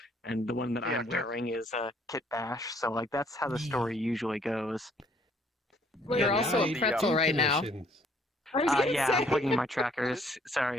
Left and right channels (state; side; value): normal; both; correlation 0.63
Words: And the one that Yeah, I'm wearing is Kit Bash. So like that's how the story usually goes. You're Yeah, also a the, pretzel right now. I was gonna Yeah, say. I'm plugging my trackers.